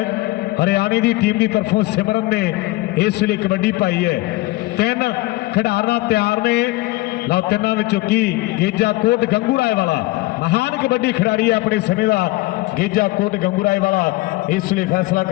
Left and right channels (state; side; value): quieter; right; 20.2 dB